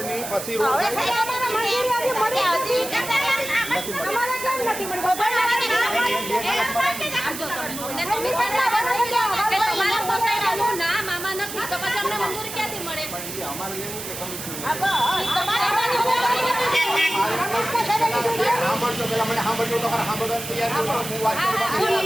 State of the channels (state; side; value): noise; right; hiss, 8 dB below the sound